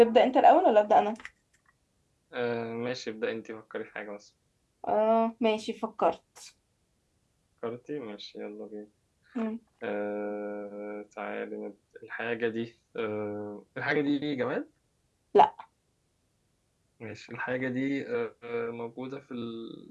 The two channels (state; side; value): identical; both; correlation 1.00